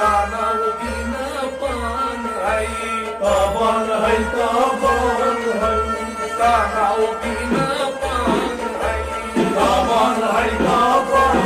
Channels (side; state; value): both; identical; correlation 1.00